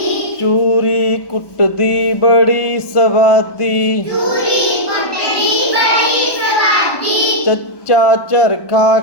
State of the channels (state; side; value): late; right; 1.2 ms